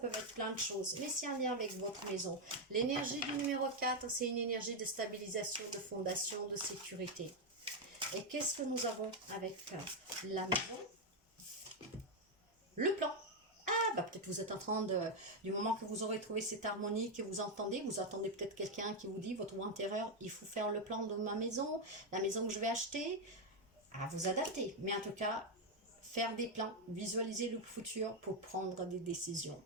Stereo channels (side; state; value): both; normal; correlation 0.03